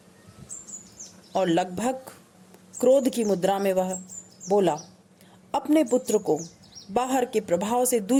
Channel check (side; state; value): both; identical; correlation 1.00